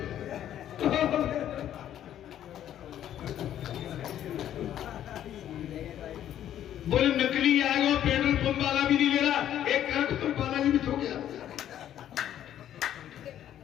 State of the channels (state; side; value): quieter; right; 11.1 dB